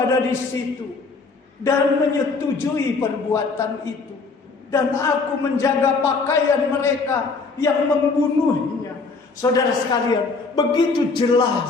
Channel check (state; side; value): quieter; right; 4.2 dB